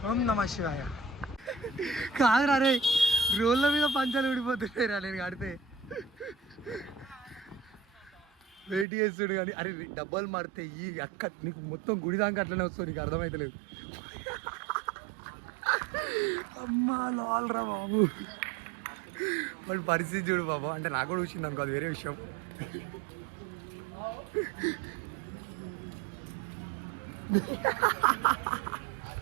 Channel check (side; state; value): left; drops out; at 8.8 s